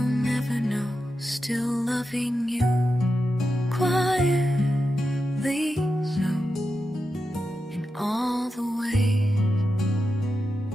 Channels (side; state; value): both; normal; correlation 0.89